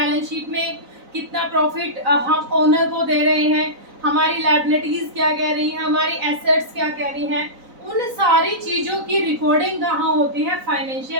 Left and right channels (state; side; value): late; left; 4.0 ms